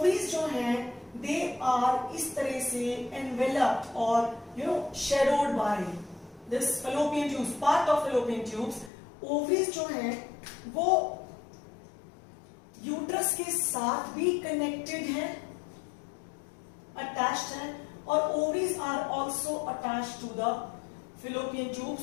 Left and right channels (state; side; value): drops out; right; at 8.9 s